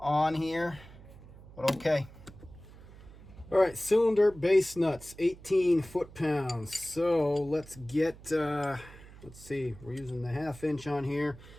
here, but okay. All right, cylinder base nuts, 18 foot-pounds. So let's get, let's see, we're using the 1/2 inch on here.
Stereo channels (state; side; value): noise; right; hum, 19 dB below the sound